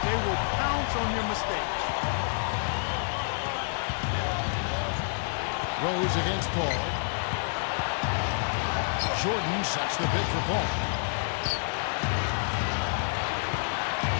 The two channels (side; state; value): right; silent; digital silence